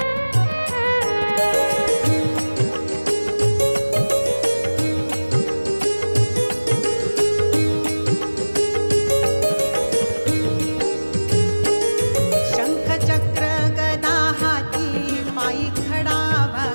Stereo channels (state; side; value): inverted; both; correlation -1.00